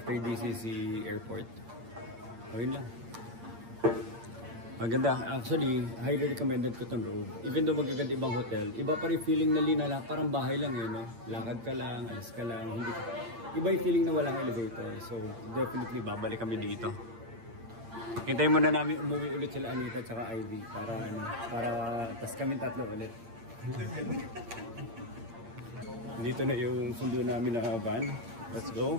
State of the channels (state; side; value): late; left; 8.7 ms